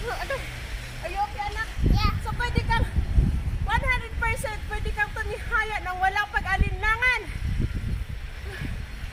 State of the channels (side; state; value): both; identical; correlation 1.00